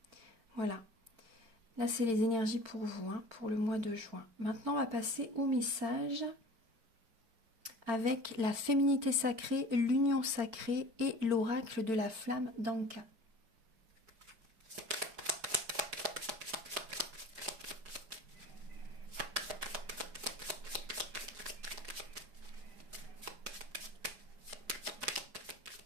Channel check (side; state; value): left; late; 4.5 ms